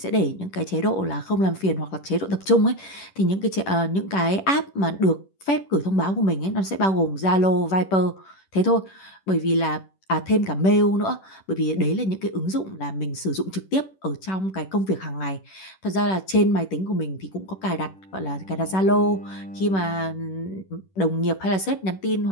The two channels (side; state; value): right; late; 10 ms